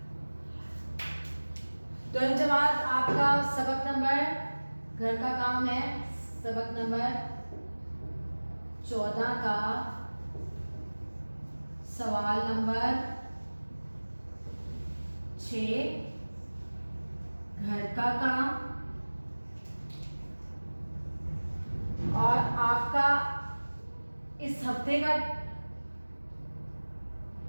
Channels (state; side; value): inverted; both; correlation -1.00